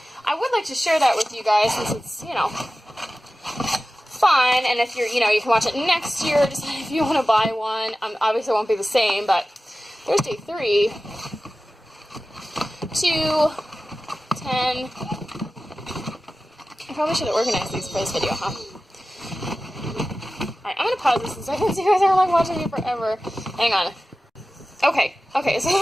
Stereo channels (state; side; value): normal; both; correlation 0.95